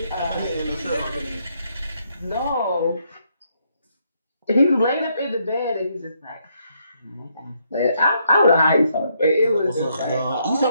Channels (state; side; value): inverted; both; correlation -0.74